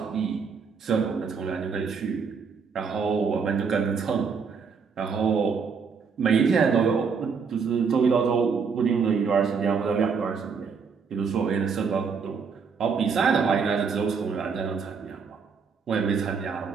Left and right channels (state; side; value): quieter; left; 5.7 dB